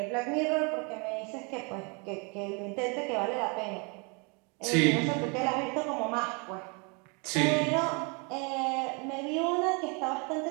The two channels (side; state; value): left; quieter; 32.8 dB